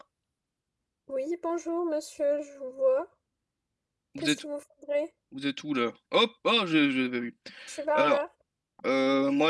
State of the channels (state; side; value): identical; both; correlation 1.00